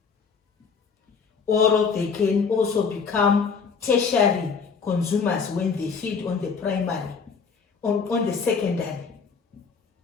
Or they can also become tertiary consumers when they feed on the primary, on the secondary.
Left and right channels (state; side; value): quieter; right; 5.6 dB